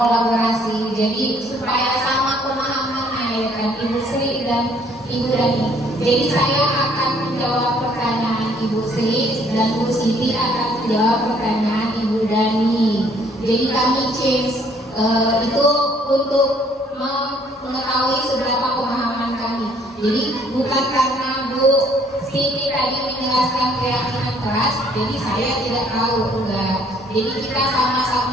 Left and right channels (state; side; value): normal; both; correlation 0.62